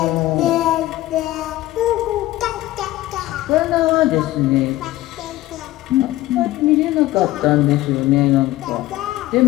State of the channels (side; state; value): right; quieter; 16.4 dB